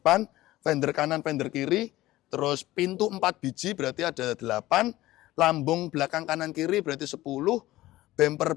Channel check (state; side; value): quieter; right; 16.6 dB